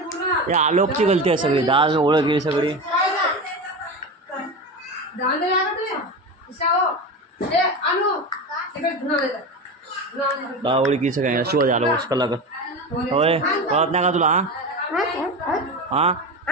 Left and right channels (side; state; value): both; normal; correlation 0.24